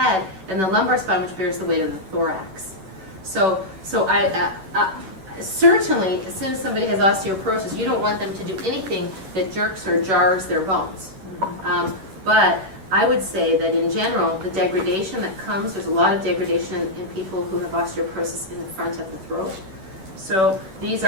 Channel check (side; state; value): left; late; 11 ms